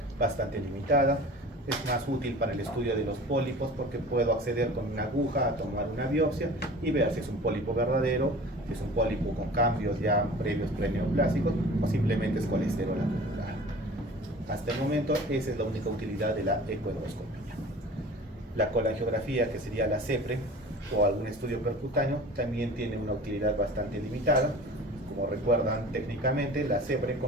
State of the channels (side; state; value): both; normal; correlation 0.41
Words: bastante limitada. Es más útil para el estudio de los pólipos porque puedo acceder con una aguja a tomar una biopsia y ver si es un pólipo verdadero, si es un pólipo con cambios ya previos preneoplásicos o simplemente es colesterol acumulado. Hasta el momento esa es la única utilidad de la ecoendoscopía. La colangiografía, que sería la CEPRE o algún estudio percutáneo, también tiene una utilidad bastante limitada. Como recuerdan técnicamente, la CEPRE